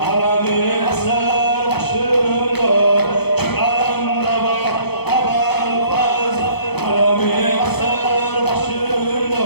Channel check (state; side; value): late; right; 0.98 ms